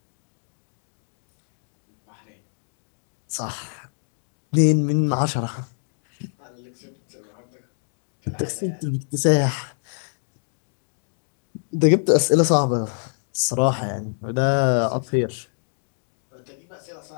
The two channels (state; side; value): silent; right; digital silence